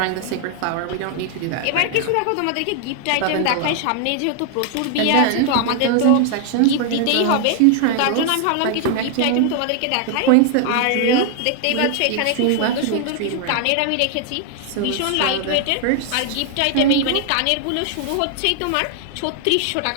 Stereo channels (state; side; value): different; both; correlation 0.00